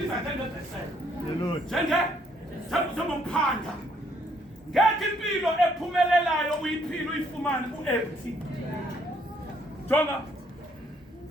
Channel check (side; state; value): both; normal; correlation 0.68